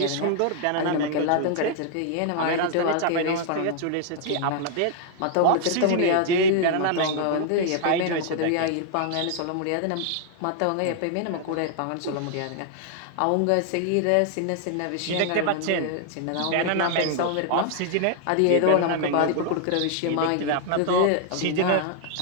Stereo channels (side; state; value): both; different; correlation 0.00